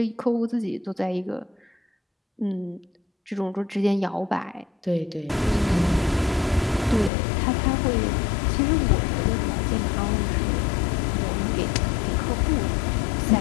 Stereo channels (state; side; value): drops out; right; at 7.1 s